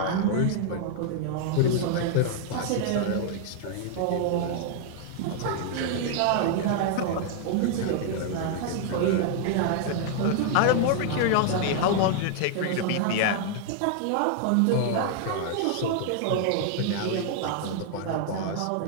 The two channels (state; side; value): different; both; correlation 0.00